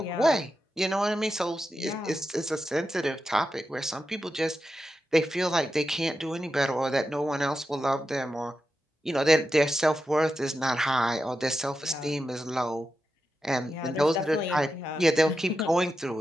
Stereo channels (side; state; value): both; normal; correlation 0.89